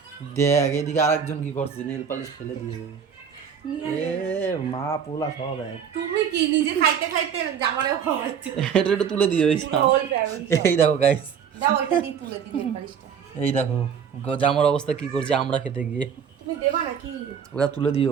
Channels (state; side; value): quieter; left; 7.4 dB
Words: দেখ এদিকে আরেকজন কি করছে, নেল পালিশ ফেলে দিয়ে। এ মা পোলা সব এক। তুমি কি নিজে খাইতে খাইতে জামারেও খাওয়াচ্ছ? এটা একটু তুলে দিও। এই দেখো গাইস, দাও ওইটা দিয়ে তুলে দিই পালিশটা। এই দেখো জামার অবস্থা কি করছে আমরা খেতে গিয়ে। তুমি দেবা নাকি? ওটা তুলে